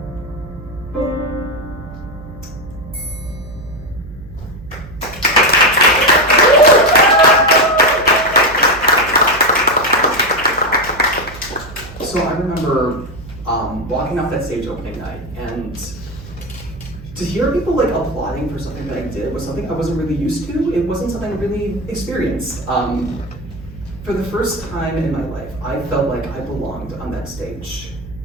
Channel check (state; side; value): noise; right; hum, 15 dB below the sound